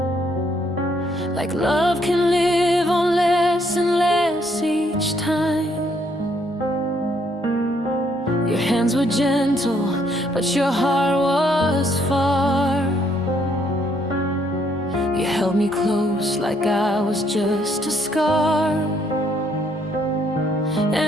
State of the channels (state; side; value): normal; both; correlation 0.69